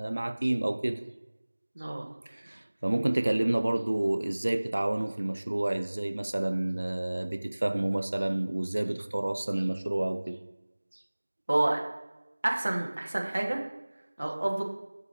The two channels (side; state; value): both; inverted; correlation -1.00